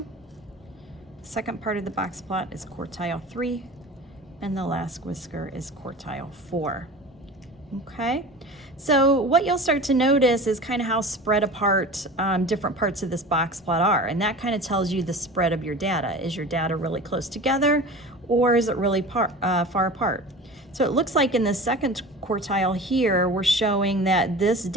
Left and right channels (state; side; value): normal; both; correlation 0.36